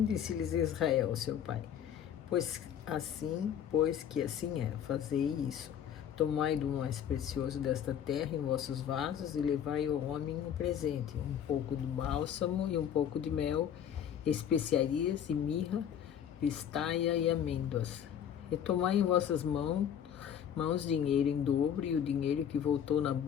disse-lhes Israel, seu pai: pois que assim é, fazei isso. Tomai do mais precioso desta terra em vossos vasos e levai ao homem um presente, um pouco de bálsamo e um pouco de mel, especiarias e mirra, pistaia e amêndoas. E tomai em vossas mãos dinheiro em dobro, e o dinheiro que voltou na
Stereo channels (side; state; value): right; quieter; 9.1 dB